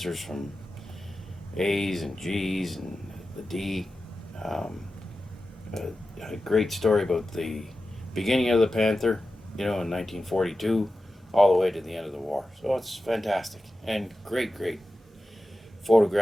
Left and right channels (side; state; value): both; normal; correlation 0.93